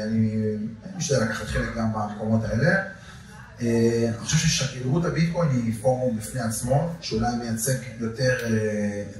אני משתדל לקחת חלק גם במקומות האלה. אני חושב ששגרירות הביטקוין היא פורום בפני עצמו, שאולי מייצג יותר,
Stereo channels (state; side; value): identical; both; correlation 1.00